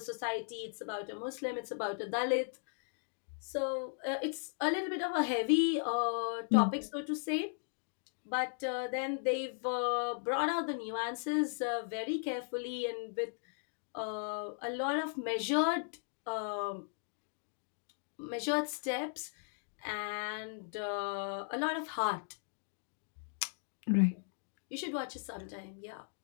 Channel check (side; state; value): right; silent; digital silence